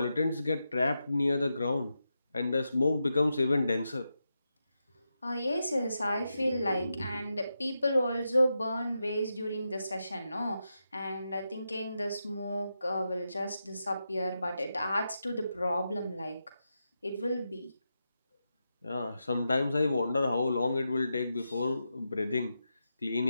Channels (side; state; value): both; inverted; correlation -0.87